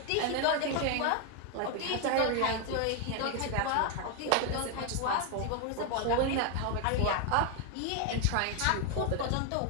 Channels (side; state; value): both; different; correlation 0.01